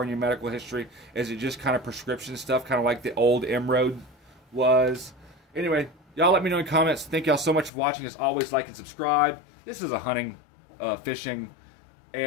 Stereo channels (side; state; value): right; drops out; at 7.7 s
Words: in your medical history? Is it just kind of prescription stuff, kind of like the old M-Road was? Anyway, y'all let me know in the comments. Thank y'all so much for watching. As always, like and subscribe. This is a hunting, fishing,